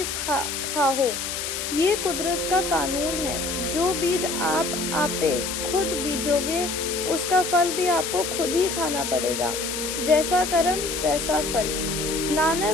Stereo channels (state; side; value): noise; left; hiss, 4 dB below the sound